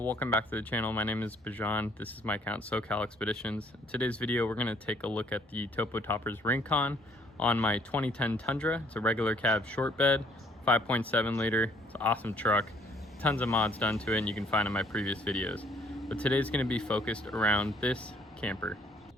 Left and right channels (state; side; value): normal; both; correlation 0.62